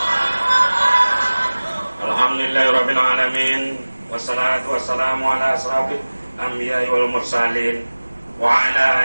Alhamdulillahirabbil alamin wassalatu wassalamu ala asrofil anbiya'i wal mursalin wa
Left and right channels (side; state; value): both; inverted; correlation -1.00